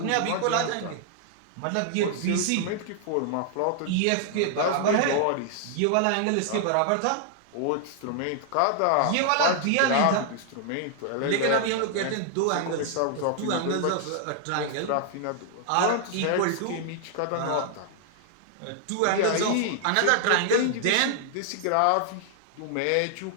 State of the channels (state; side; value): different; both; correlation 0.00